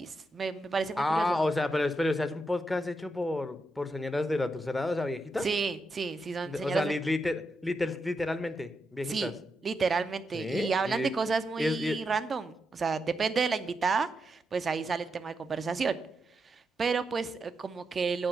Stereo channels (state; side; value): normal; both; correlation 0.85